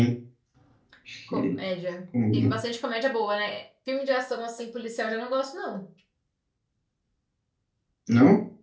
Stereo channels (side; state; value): both; identical; correlation 1.00